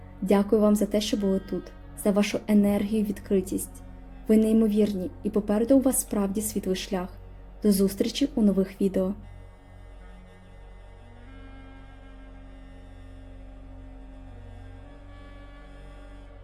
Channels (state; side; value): identical; both; correlation 1.00